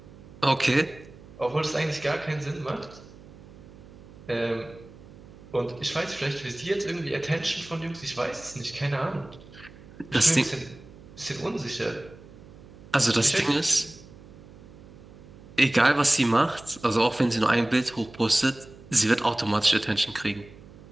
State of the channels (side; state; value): right; noise; hum, 20 dB below the sound